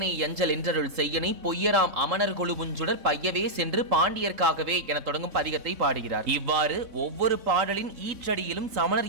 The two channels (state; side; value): late; left; 3.8 ms